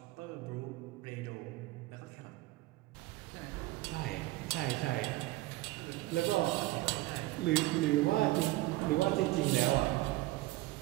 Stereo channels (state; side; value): quieter; left; 18.6 dB